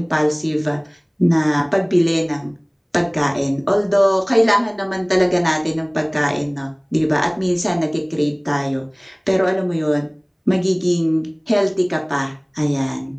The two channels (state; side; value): identical; both; correlation 1.00